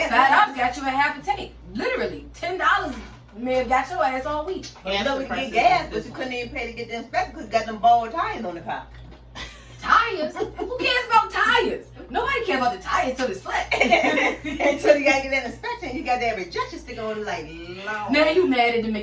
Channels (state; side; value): identical; both; correlation 1.00